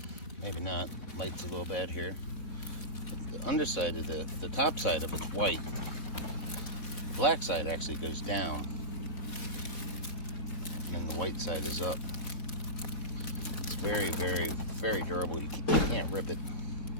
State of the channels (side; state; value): right; late; 4.5 ms